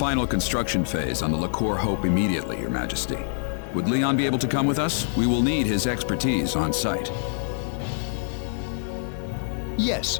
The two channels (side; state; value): right; silent; digital silence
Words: construction phase on the Liqueur Hope immediately, Your Majesty. Would Leon be able to come with us? We will need his expertise on site.